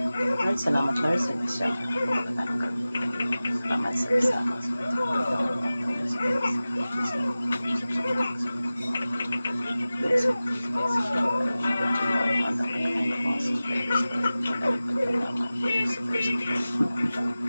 Lord, salamat Lord sa bisya. Salamat sa bisya.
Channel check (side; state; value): both; inverted; correlation -0.97